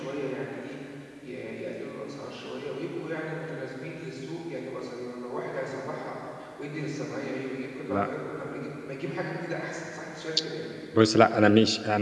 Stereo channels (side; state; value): both; identical; correlation 1.00